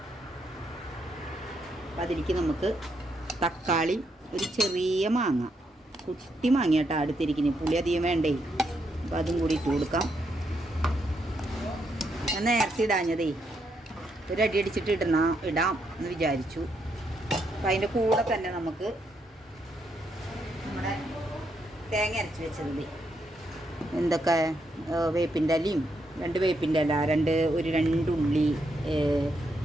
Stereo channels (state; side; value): normal; both; correlation 0.78